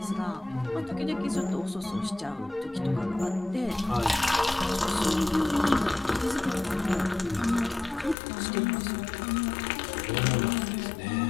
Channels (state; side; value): drops out; right; at 8.2 s